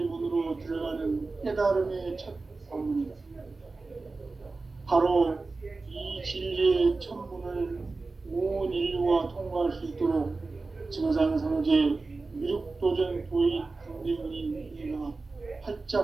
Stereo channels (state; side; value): quieter; left; 3.7 dB